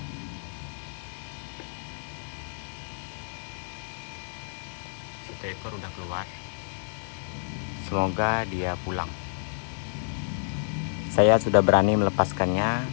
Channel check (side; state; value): right; silent; digital silence